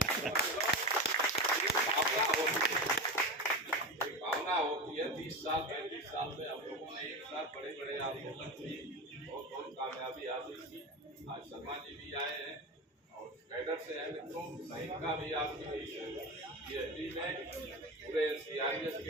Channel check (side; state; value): both; normal; correlation 0.22